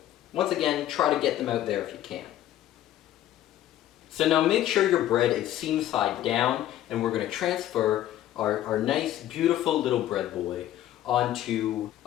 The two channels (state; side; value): quieter; right; 12.8 dB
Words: once again, try to get them out there if you can. So now make sure your bread is seam side down, and we're going to transfer our nice, beautiful little bread boy onto